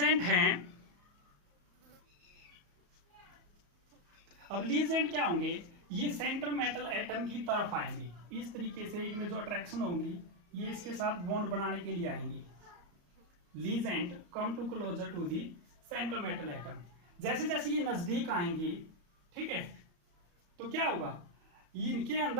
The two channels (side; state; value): left; late; 34 ms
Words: हैं, अब लीजेंड क्या होंगे, ये सेंट्रल मेटल एटम की तरफ आएंगे। इस तरीके से इनमें जो अट्रैक्शन होंगी ये इसके साथ बॉन्ड बनाने के लिए आएंगे। Ligand come to closer to the central metal atom. जैसे जैसे ये नजदीक आएंगे, ठीक है, तो क्या होगा, इनके